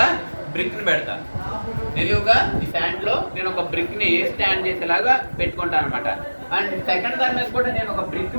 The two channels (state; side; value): inverted; both; correlation -1.00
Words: పెడతా. నిలువుగా ఈ స్టాండ్ లో నేను ఒక బ్రిక్ ని స్టాండ్ చేసేలాగా పెట్టుకుంటాను అనమాట. అండ్ సెకండ్ దాని మీద కూడా నేను ఒక బ్రిక్